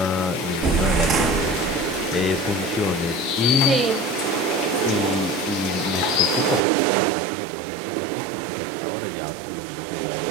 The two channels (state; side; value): drops out; left; at 6.7 s